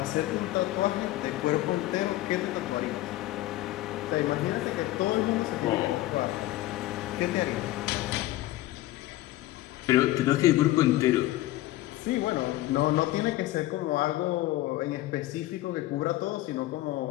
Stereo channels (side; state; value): right; quieter; 16.3 dB